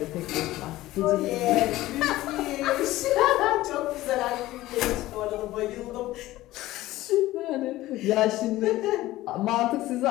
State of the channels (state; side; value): quieter; right; 16.5 dB